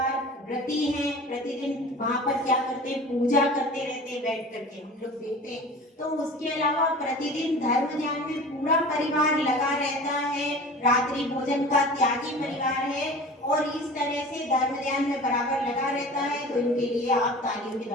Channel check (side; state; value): both; normal; correlation 0.39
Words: व्रती हैं, प्रतिदिन वहां पर क्या करते हैं, पूजा करते रहते हैं बैठ करके, हम लोग देखते हैं। तो उसके अलावा प्रतिदिन धर्म ध्यान में पूरा परिवार लगा रहता है, रात्रि भोजन का त्यागी परिवार है, और इस तरह से धर्म ध्यान में बराबर लगा रहता है। तो इनके लिए आप तालियों के